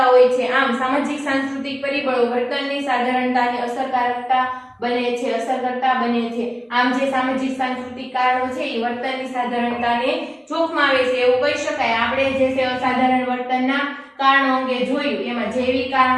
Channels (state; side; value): identical; both; correlation 1.00